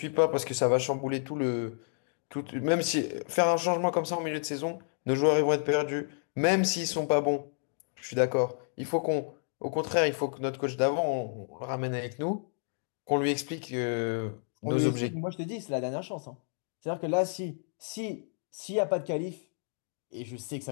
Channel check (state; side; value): silent; right; 57 dB below the other